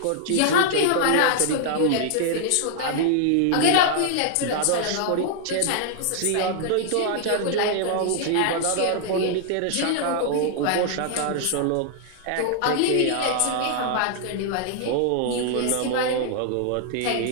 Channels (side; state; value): both; different; correlation -0.01